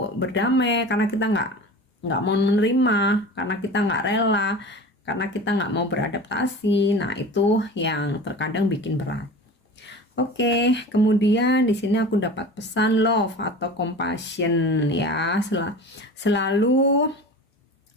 berdamai, karena kita nggak mau menerima, karena kita nggak rela, karena kita nggak mau beradaptasi. Nah, itu yang terkadang bikin berat. Oke, kemudian di sini aku dapat pesan love atau compassion ya. Selalu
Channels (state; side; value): normal; both; correlation 0.35